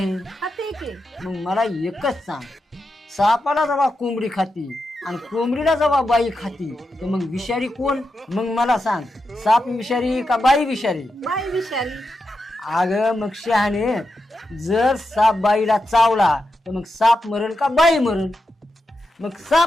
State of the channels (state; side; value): normal; both; correlation 0.88